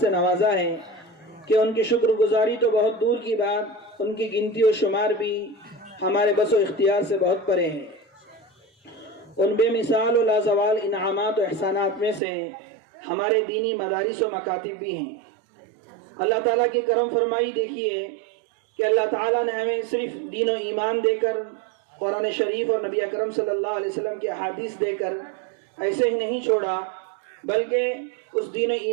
نوازا ہے کہ ان کی شکر گزاری تو بہت دور کی بات، ان کی گنتی و شمار بھی ہمارے بس و اختیار سے بہت پرے ہیں. ان بے مثال و لازوال انعامات و احسانات میں سے ہمارے دینی مدارس و مکاتب بھی ہیں. اللہ تعالیٰ کی کرم فرمائی دیکھیے کہ اللہ تعالیٰ نے ہمیں صرف دین و ایمان دے کر، قرآن شریف اور نبی اکرم صلی اللہ علیہ وسلم کے احادیث دے کر ایسے ہی نہیں چھوڑا، بلکہ اس دین و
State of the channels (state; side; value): drops out; left; at 12.2 s